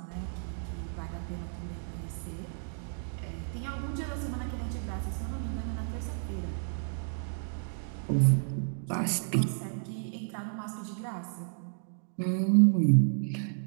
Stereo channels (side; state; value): left; silent; digital silence